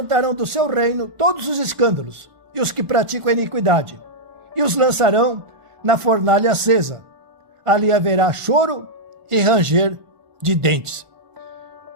do seu reino todos os escândalos e os que praticam a iniquidade, e os lançarão na fornalha acesa. Ali haverá choro e ranger de dentes.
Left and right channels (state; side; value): late; left; 1.4 ms